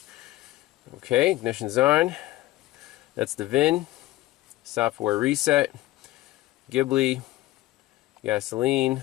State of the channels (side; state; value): right; quieter; 16.8 dB